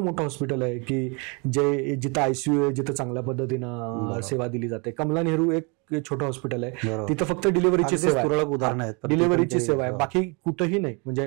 मोठं हॉस्पिटल आहे की जिथं ICU आहे, जिथं चांगल्या पद्धतीनं सेवा दिली जाते? कमला नेहरू एक छोटं हॉस्पिटल आहे, तिथं फक्त डिलिव्हरीची सेवा आहे, डिलिव्हरीची सेवा आहे, बाकी कुठंही नाही. म्हणजे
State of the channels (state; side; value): quieter; left; 32.4 dB